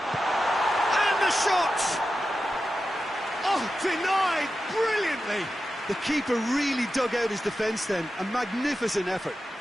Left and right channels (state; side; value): normal; both; correlation 0.91